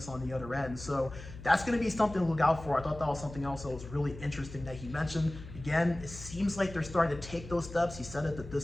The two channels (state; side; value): noise; left; hum, 14 dB below the sound